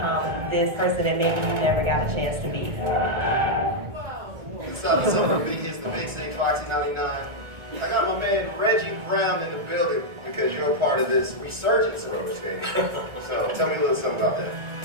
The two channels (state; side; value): late; left; 1.4 ms